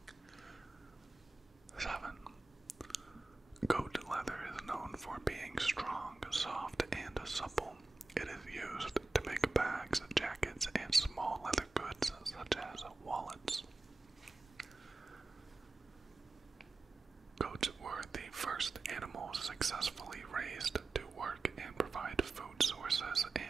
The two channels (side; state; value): left; quieter; 3.4 dB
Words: 7. Goat leather is known for being strong, soft, and supple. It is used to make bags, jackets, and small leather goods such as wallets. Goats were the first animals successfully raised to work and provide food sources